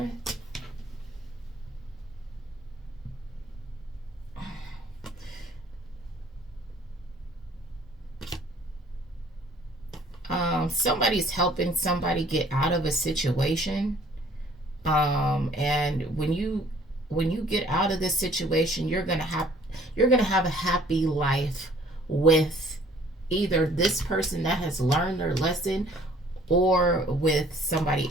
Somebody's helping somebody get out of a situation. And when you get out of this situation, you're gonna have a happy life with either this person that has learned their lesson or with somebody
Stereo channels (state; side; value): normal; both; correlation 0.57